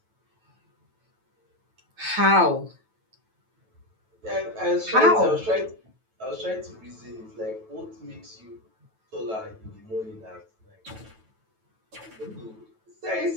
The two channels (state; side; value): late; left; 9.1 ms